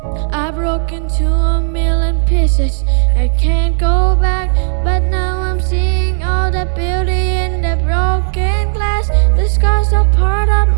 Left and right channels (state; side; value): silent; left; digital silence